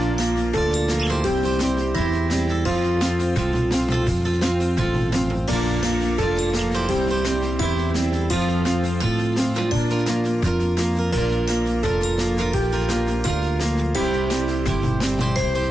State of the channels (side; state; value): both; normal; correlation 0.90